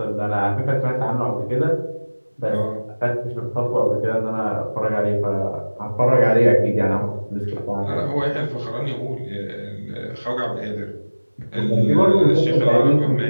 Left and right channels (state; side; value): inverted; both; correlation -1.00